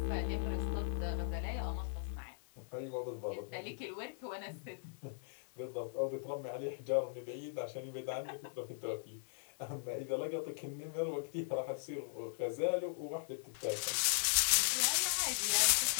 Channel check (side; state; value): right; silent; digital silence